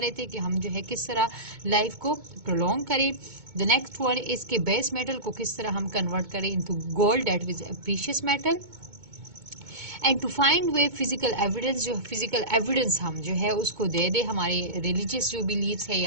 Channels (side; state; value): left; late; 2.2 ms